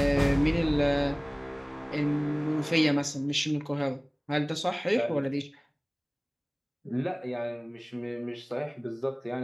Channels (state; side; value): identical; both; correlation 1.00